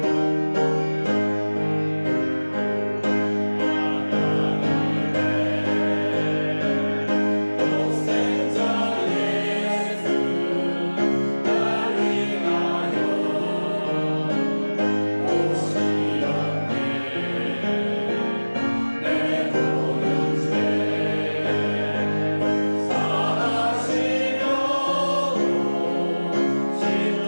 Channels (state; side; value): inverted; both; correlation -1.00